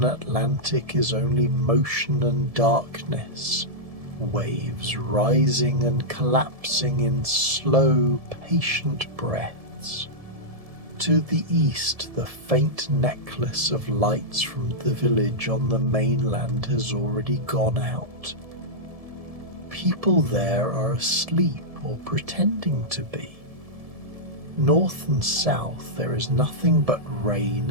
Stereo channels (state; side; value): late; left; 1.7 ms